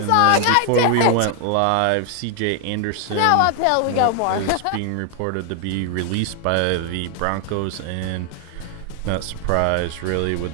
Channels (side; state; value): both; different; correlation 0.00